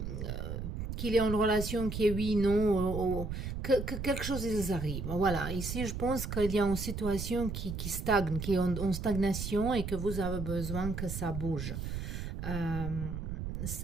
qu'il y a une relation qui est oui, non, que quelque chose ils arrive. Voilà. Ici, je pense qu'il y a une situation qui stagne, qui est en stagnation et que vous avez besoin que ça bouge.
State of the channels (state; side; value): noise; right; rumble, 5 dB below the sound